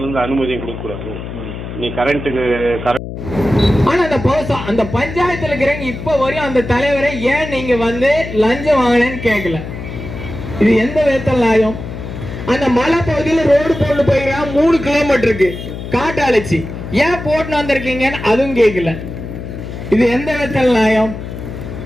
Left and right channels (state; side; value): noise; left; hum, 9 dB below the sound